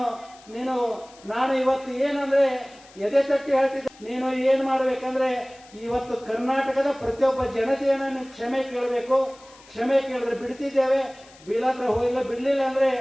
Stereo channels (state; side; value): noise; left; hiss, 24 dB below the sound